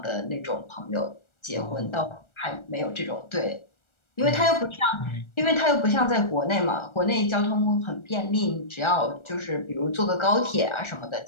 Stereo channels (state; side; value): late; right; 1.4 ms